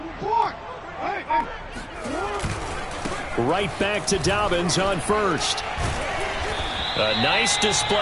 Right back to Dobbins on first. A nice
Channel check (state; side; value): identical; both; correlation 1.00